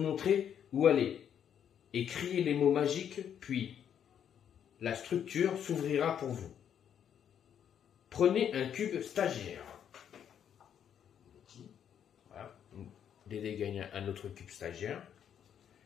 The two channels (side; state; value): right; quieter; 8.9 dB